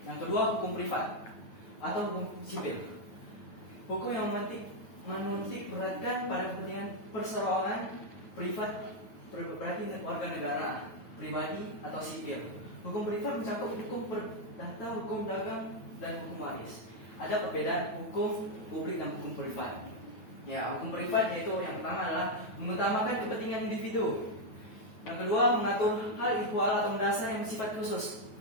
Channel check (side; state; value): right; late; 9.2 ms